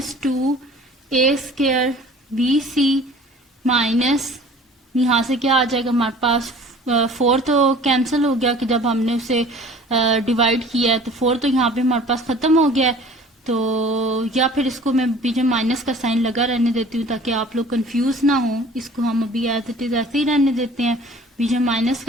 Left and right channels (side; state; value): both; normal; correlation 0.47